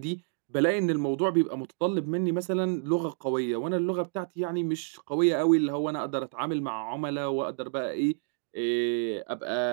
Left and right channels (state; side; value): silent; left; digital silence